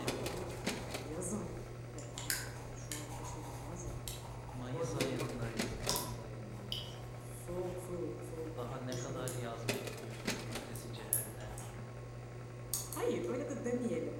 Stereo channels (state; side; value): identical; both; correlation 1.00